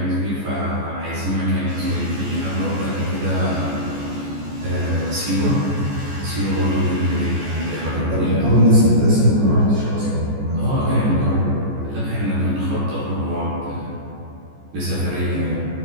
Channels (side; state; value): left; late; 14 ms